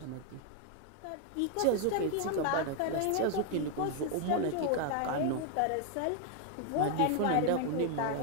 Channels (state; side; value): different; both; correlation 0.00